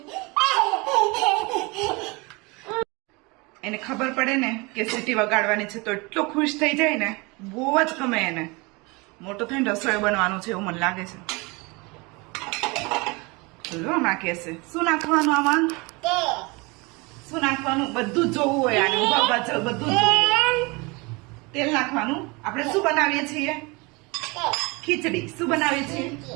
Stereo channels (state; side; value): quieter; left; 26.6 dB